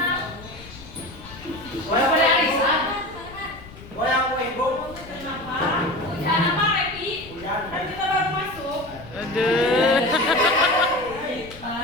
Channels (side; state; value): left; noise; rumble, 18 dB below the sound